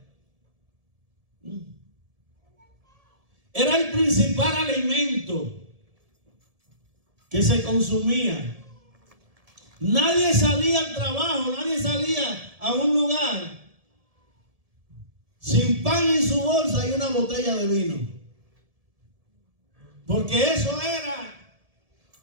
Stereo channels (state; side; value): late; left; 1.7 ms